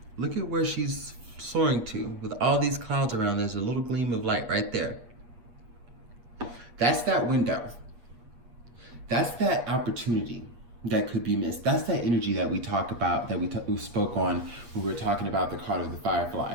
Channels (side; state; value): left; late; 8.4 ms